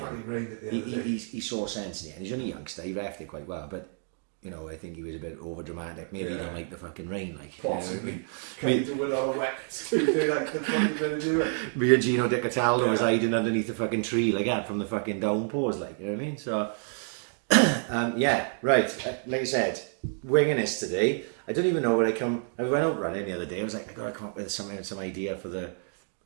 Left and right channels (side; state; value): left; silent; 55 dB below the other